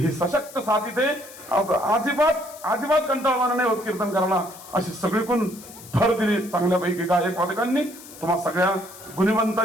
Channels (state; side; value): noise; left; hiss, 18 dB below the sound